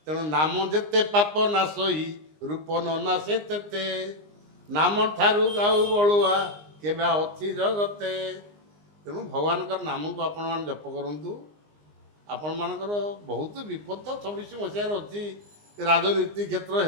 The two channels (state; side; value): late; left; 19 ms